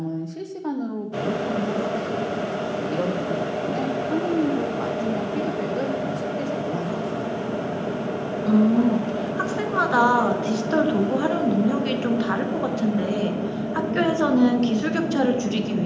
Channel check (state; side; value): identical; both; correlation 1.00